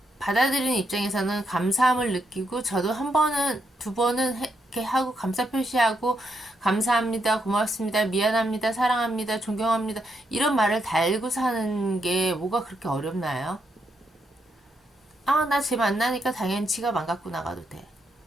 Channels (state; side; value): normal; both; correlation 0.79